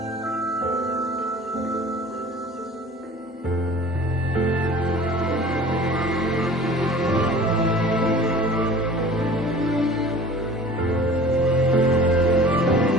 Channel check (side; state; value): both; normal; correlation 0.45